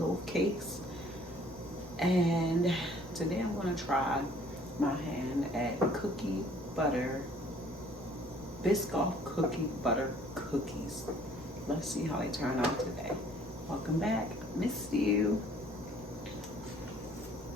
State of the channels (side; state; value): both; normal; correlation 0.57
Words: cakes. And today I'm going to try my hand at cookie butter, Biscoff cookie butter cookies. Let's see how they turn out today. Welcome back. Missed you.